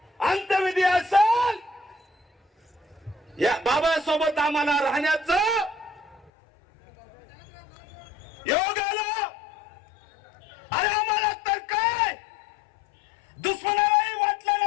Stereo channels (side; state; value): right; drops out; at 6.3 s